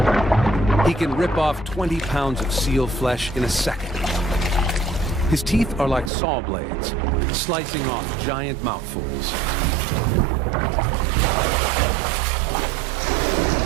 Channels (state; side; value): drops out; left; at 6.1 s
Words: He can rip off 20 pounds of seal flesh in a second. His teeth are like saw blades, slicing off giant mouthfuls.